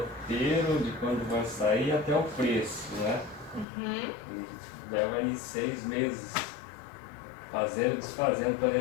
de quando vai sair até o preço, né? E leva aí 6 meses fazendo e desfazendo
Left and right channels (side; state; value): right; drops out; at 3.7 s